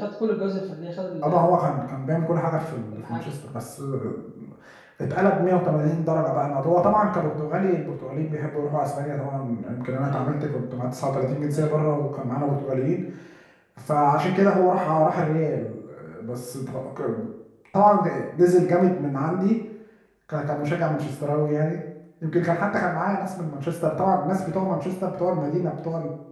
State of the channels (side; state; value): both; identical; correlation 1.00